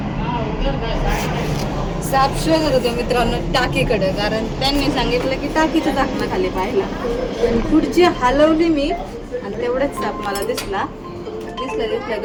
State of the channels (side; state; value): both; identical; correlation 1.00